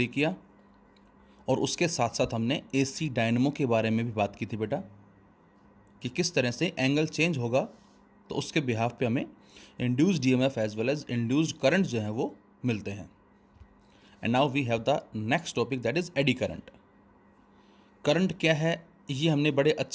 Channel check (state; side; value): identical; both; correlation 1.00